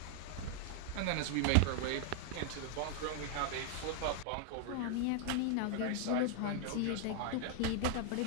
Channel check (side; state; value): both; different; correlation 0.00